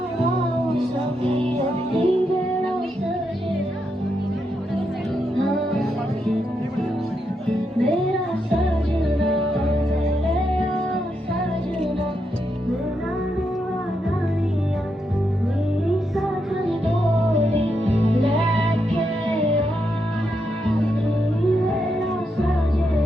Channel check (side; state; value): both; normal; correlation 0.82